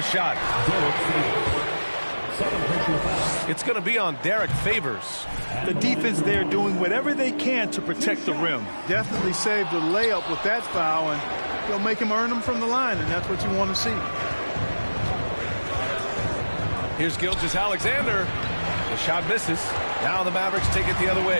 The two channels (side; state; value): both; inverted; correlation -1.00